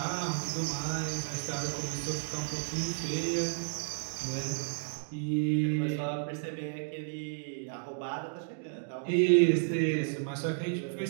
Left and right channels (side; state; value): left; silent; digital silence